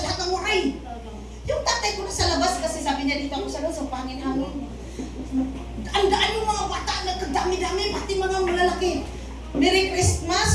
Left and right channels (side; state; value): both; identical; correlation 1.00